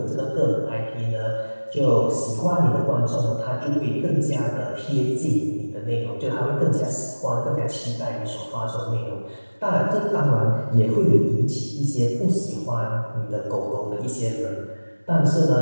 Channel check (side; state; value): both; inverted; correlation -1.00